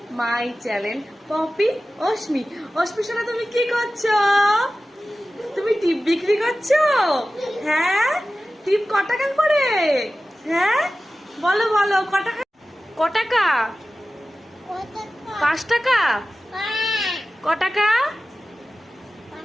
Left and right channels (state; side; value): normal; both; correlation 0.95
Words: my channel Poppy Ashmi. Ashmi সোনা, তুমি কি করছো? তুমি টিপ বিক্রি করছো? হ্যাঁ, টিপ ক টাকা করে? হ্যাঁ বলো বলো, ক টাকা? ক টাকা? 5 টাকা? ক টাকা?